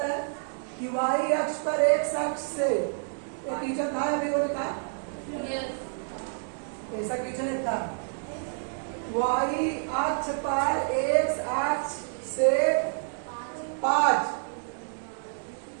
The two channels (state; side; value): silent; left; 59 dB below the other